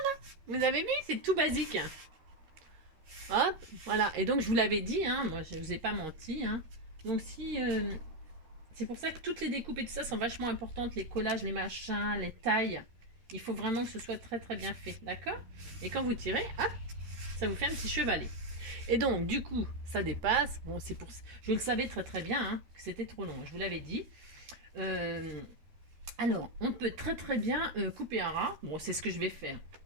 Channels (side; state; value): left; late; 13 ms